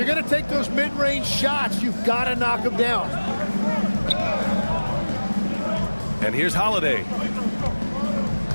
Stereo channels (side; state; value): both; inverted; correlation -1.00